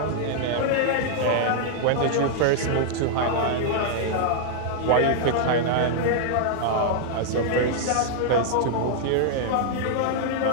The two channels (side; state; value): both; different; correlation -0.01